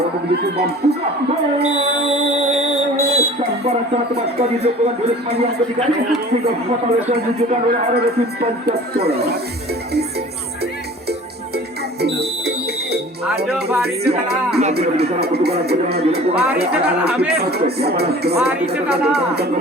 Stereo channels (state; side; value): normal; both; correlation 0.44